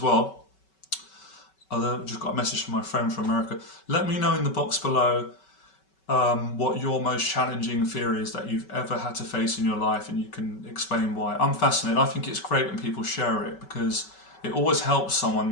well. I've just got a message from my friend from America. Let me know in the box below what your most challenging fear is that you've ever had to face in your life, and you can explain why. I'm fascinated. I think it's great when people share it, because it always helps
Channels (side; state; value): right; late; 5.3 ms